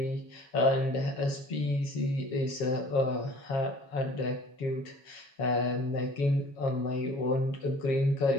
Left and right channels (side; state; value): right; late; 7.1 ms